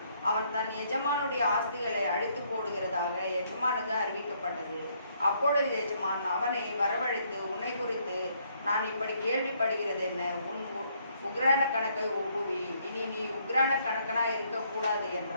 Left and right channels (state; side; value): inverted; both; correlation -0.69